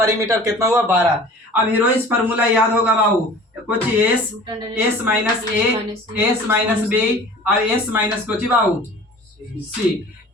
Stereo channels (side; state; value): both; normal; correlation 0.44